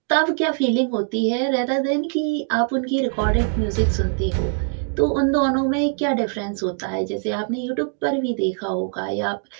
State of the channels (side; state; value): left; silent; 56 dB below the other